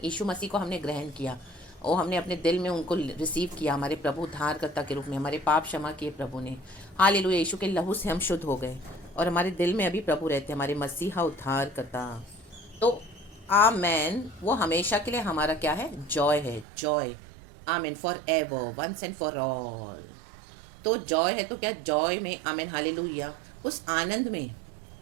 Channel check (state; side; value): drops out; left; at 16.7 s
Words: यीशु मसीह को हमने ग्रहण किया, और हमने अपने दिल में उनको रिसीव किया हमारे प्रभु उद्धारकर्ता के रूप में, हमारे पाप क्षमा किए प्रभु ने। हालेलुया। यीशु के लहू से हम शुद्ध हो गए, और हमारे दिल में अभी प्रभु रहते हैं, हमारे मसीहा उद्धारकर्ता। तो आमेन। वो हमेशा के लिए हमारा क्या है, जॉय है, joy. Amen. For ever, once and for all. तो जॉय है तो क्या, जॉय में आमेन हालेलुया, उस आनंद में